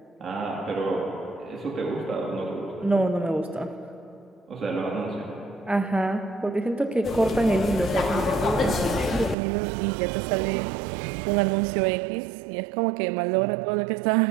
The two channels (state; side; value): drops out; left; at 9.3 s